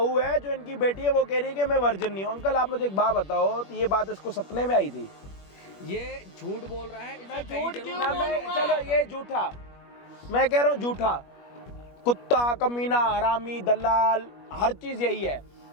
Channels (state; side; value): late; right; 21 ms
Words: है, जो इनकी बेटी है, वो कह रही है कि मैं वर्जिन नहीं हूँ। अंकल आप मुझे एक बात बताओ, तो ये बात इसको सपने में आई थी? ये झूठ बोल रहा है। इसका मैं कहीं झूठ जरूर क्यों बोलूंगा। बोलूंगा? चलो ये झूठा, मैं कह रहा हूँ झूठा, कुत्ता, कमीना, हरामी, दलाल, हर चीज यही है,